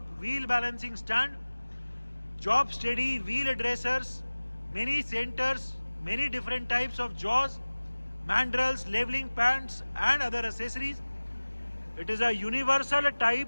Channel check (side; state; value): both; inverted; correlation -1.00